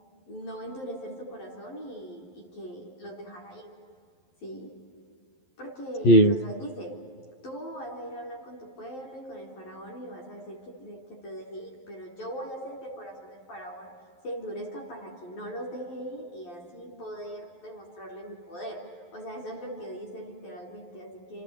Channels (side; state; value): right; late; 11 ms